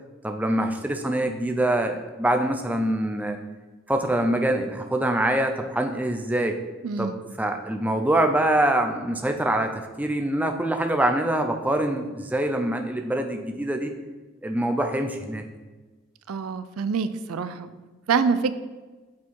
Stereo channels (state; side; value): normal; both; correlation 0.68